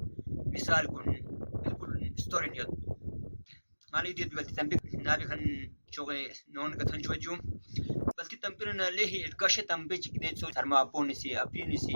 مثال كن بالكل ستوري نيوت مالي دي بلتي تمبيون نابي كان شوغي نون كتن شوجو بلتي تمبيون ليه الكشه تمبيج كده سو سرما بونسي ابينسي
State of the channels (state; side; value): inverted; both; correlation -1.00